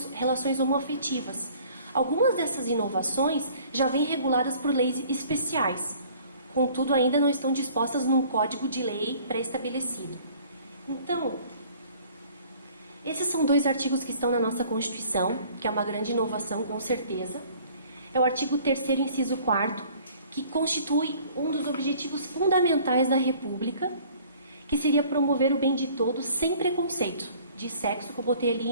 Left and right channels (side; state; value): both; inverted; correlation -0.53